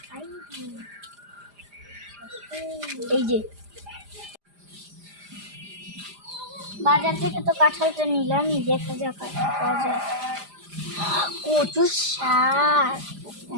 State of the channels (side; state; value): left; late; 5.0 ms